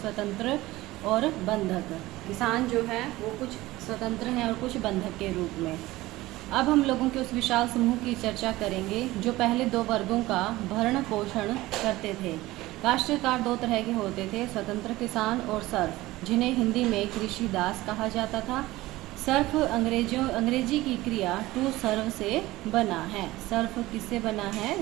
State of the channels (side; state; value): left; quieter; 18.3 dB